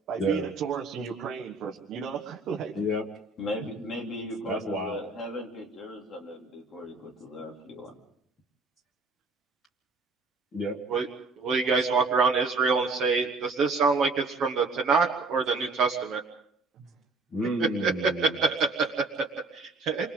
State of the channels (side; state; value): left; quieter; 3.8 dB